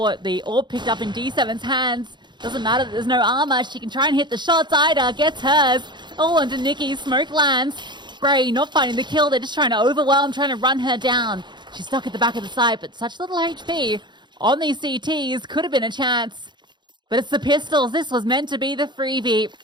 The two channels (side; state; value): left; late; 0.22 ms